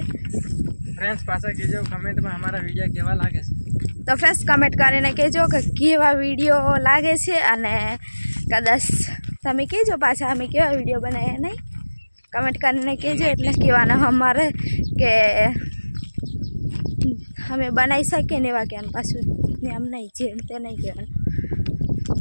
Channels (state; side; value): inverted; both; correlation -1.00